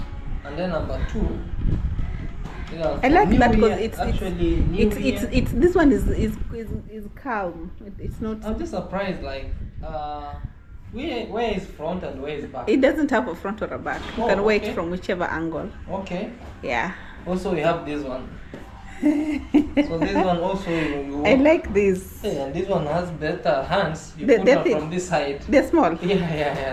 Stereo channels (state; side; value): identical; both; correlation 1.00